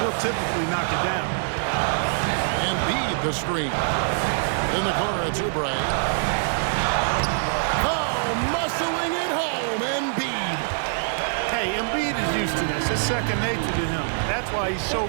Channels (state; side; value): silent; left; digital silence